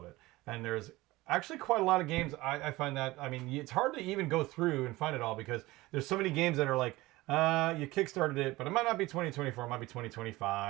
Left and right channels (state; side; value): quieter; left; 19.5 dB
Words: it. And there's actually quite a lot of games. I find that, I mean, it's hard to even go through and find it all because there's so many games that are like, you kickstarted it, but it might not be 2024, it might be